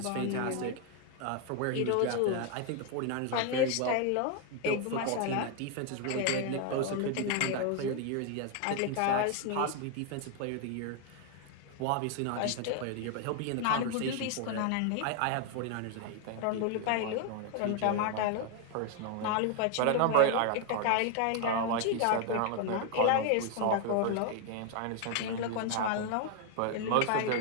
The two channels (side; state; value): both; different; correlation 0.01